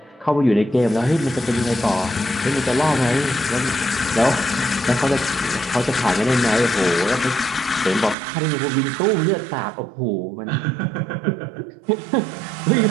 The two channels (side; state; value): left; drops out; at 8.2 s